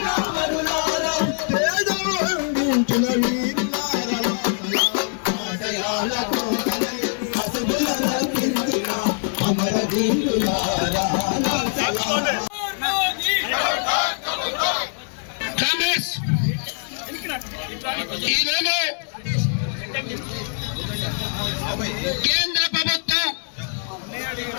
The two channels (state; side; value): silent; right; 63 dB below the other